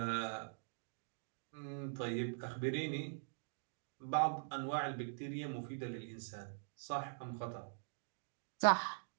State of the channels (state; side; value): silent; left; digital silence